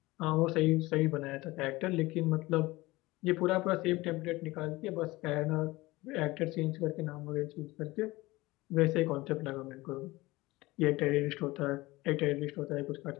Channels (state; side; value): quieter; right; 20.3 dB